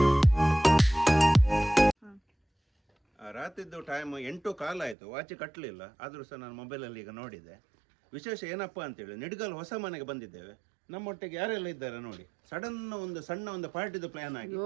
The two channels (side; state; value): left; drops out; at 5.0 s